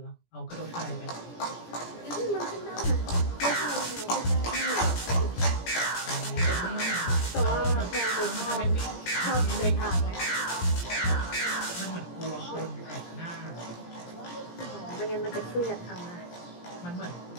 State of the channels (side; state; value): right; late; 17 ms